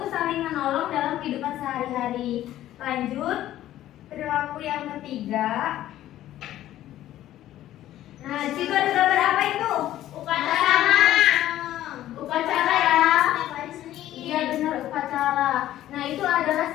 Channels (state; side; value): quieter; right; 13.4 dB